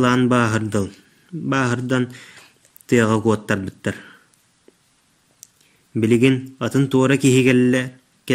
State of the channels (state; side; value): identical; both; correlation 1.00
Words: bağırdıl. Bağırdan tıyağa kuattar bittar. Biligin atın tuğra kihi